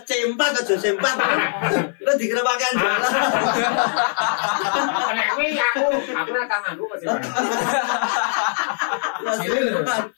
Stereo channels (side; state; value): right; silent; 56 dB below the other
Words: C4 aja C4. Lu dikira pakaian jelas. Nek kuwi aku ora tau nganggo kok C4.